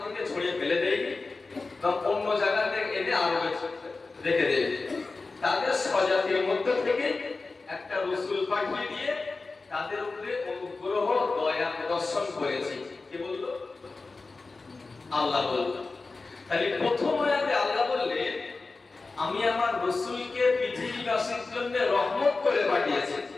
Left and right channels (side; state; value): right; quieter; 3.8 dB